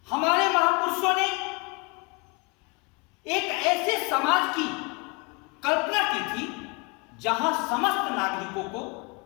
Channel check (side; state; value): right; quieter; 28.9 dB